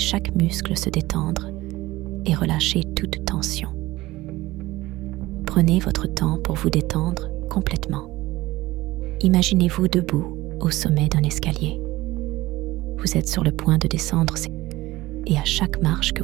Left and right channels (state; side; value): quieter; left; 18.3 dB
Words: muscle se détendre et relâchez toute tension. Prenez votre temps pour vous détendre complètement. Imaginez-vous debout au sommet d'un escalier. Vous êtes sur le point de descendre et à chaque marche que